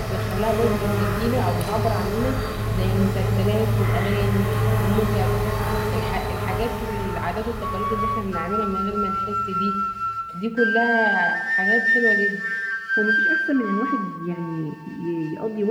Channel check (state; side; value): identical; both; correlation 1.00